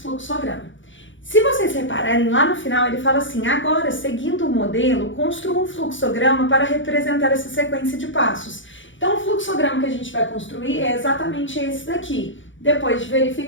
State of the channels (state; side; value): late; right; 0.56 ms